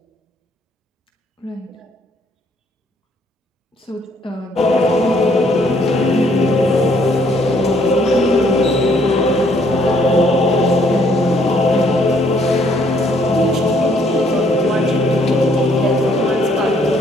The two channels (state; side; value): normal; both; correlation 0.66